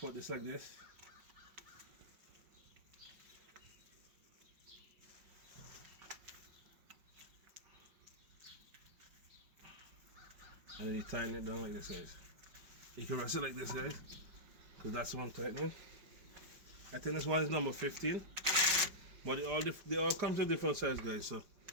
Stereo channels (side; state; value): left; late; 5.3 ms